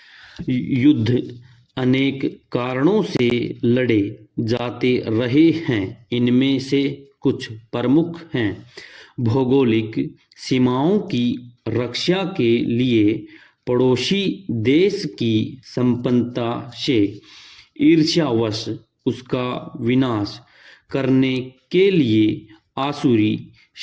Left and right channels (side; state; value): both; identical; correlation 1.00